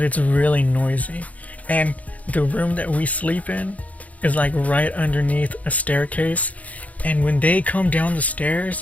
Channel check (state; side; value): late; right; 0.071 ms